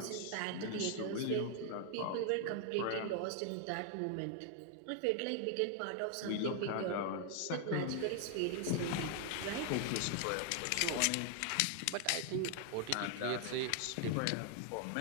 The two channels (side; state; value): both; different; correlation 0.00